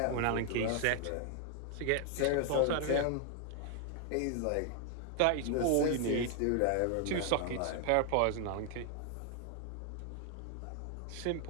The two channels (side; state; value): both; different; correlation 0.00